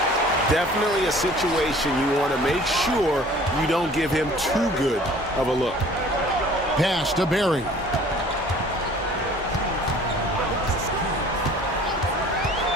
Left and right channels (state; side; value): normal; both; correlation 0.50